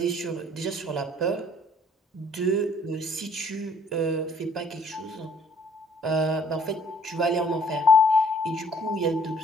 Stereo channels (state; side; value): normal; both; correlation 0.60